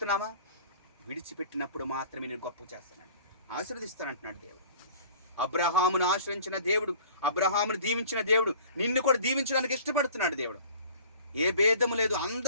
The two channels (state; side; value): inverted; both; correlation -0.47